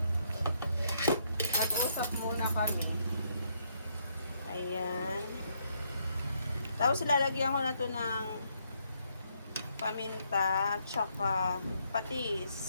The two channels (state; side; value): inverted; both; correlation -0.73